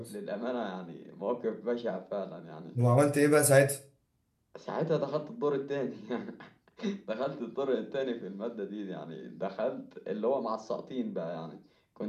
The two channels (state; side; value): identical; both; correlation 1.00